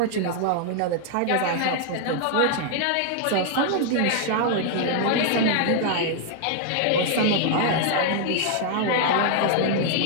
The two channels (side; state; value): both; different; correlation 0.00